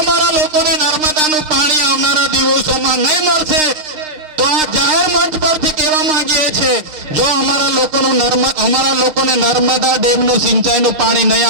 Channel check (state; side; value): late; left; 6.5 ms